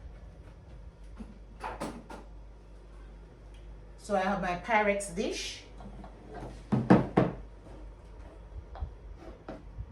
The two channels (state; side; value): identical; both; correlation 1.00